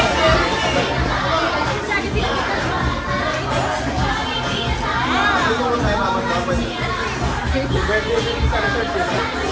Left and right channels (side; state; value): both; identical; correlation 1.00